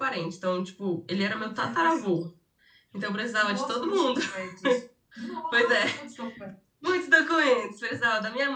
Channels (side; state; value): both; identical; correlation 1.00